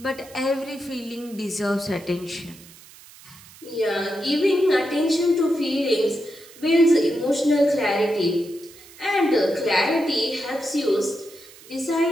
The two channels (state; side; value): noise; right; hiss, 21 dB below the sound